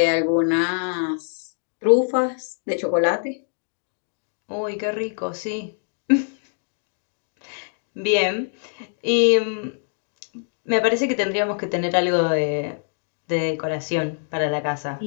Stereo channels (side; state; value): right; silent; 63 dB below the other